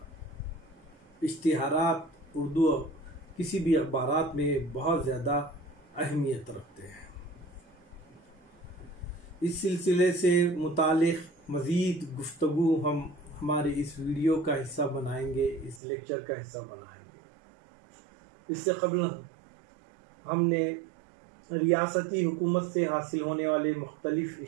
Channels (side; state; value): left; drops out; at 15.8 s